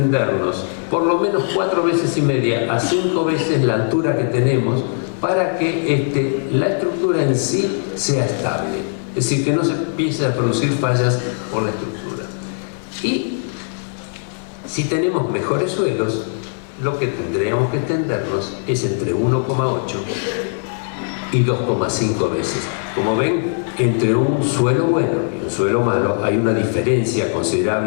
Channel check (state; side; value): silent; right; 66 dB below the other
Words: por lo menos 4,5 veces a 5 veces la altura que tenemos para que la estructura en sí sea estable. Es decir, que no se empiece a producir fallas por la estructura. Y si tenemos mejores suelos, lo que tendríamos que extendernos es entre 1,8 y 2,5 veces. Como ven, entre un suelo bueno y un suelo malo hay una diferencia